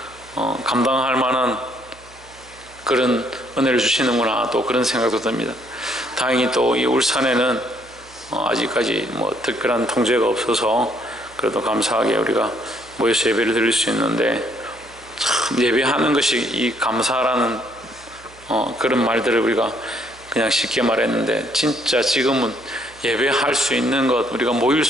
감당할 만한 그런 은혜를 주시는구나, 또 그런 생각도 듭니다. 다행히 또 이 울산에는 아직까지 특별한 통제가 없어서 그래도 감사하게 우리가 모여서 예배를 드릴 수 있는데, 참 예배하는 것이 이 감사라는 그런 말들을 우리가 그냥 쉽게 말했는데, 진짜 지금은 예배할 수 있는 것, 우리가 모일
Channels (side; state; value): right; noise; hum, 24 dB below the sound